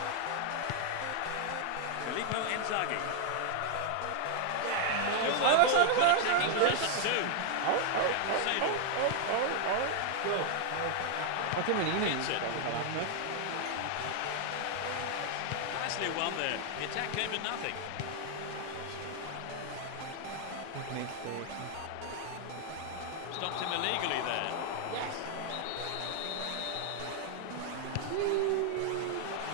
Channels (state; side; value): different; both; correlation 0.00